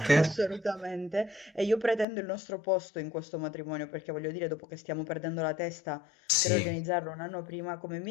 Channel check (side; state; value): right; drops out; at 2.1 s